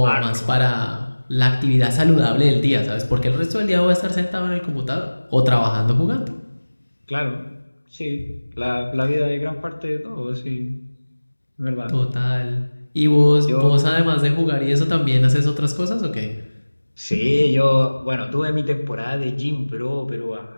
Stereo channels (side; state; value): both; inverted; correlation -1.00